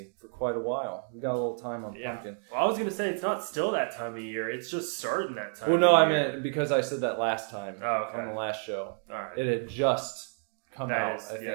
for quite a while. We got a little time on pumpkin. Well, I was going to say, it's not still that time of year. It's just starting that time of year. I meant because I said that last time on the last show. All right. It had just come out, I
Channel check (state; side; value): silent; left; 58 dB below the other